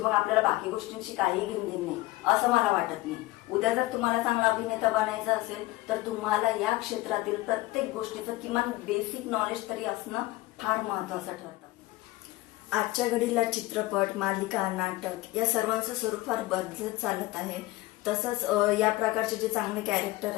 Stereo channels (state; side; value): quieter; right; 19.2 dB